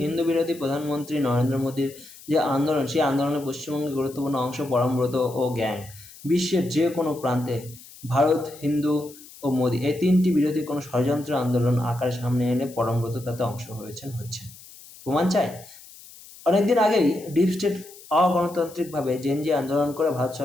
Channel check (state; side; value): noise; left; hiss, 20 dB below the sound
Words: হিন্দু বিরোধী প্রধানমন্ত্রী নরেন্দ্র মোদীর যে আন্দোলন, সেই আন্দোলনে পশ্চিমবঙ্গের গুরুত্বপূর্ণ অংশ পরমব্রত ও গ্যাং। বিশ্বের যে কোনো প্রান্তে ভারত, হিন্দু ও মোদী, এই তিনটি বিরোধী কোনো ষড়যন্ত্র আন্দোলন আকারে সামনে এনে পরমব্রত তাতে অংশ হচ্ছেন। প্রমাণ চাই? অনেকদিন আগেই ডিপ স্টেট অগণতান্ত্রিকভাবে জেনজি আন্দোলন করে ভারত